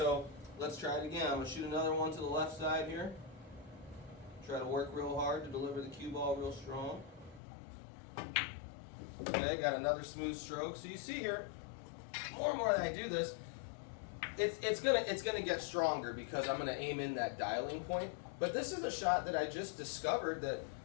let's try it again. I'm going to shoot another one to the left side here. Try to work real hard to deliver the cue ball real strong. Okay, got another smooth stroke. So you see here, more and more that I do this, it's gonna get stronger because I'm gonna aim in that dialing point. But this is a shot that I just discovered that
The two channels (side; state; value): right; drops out; at 7.4 s